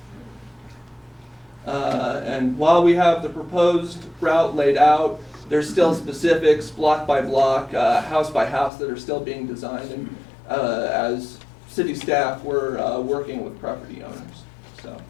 And while we have the proposed route laid out, there's still specifics, block by block, house by house, that are still being designed, and as city staff, we're working with property owners. So,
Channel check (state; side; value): drops out; right; at 8.7 s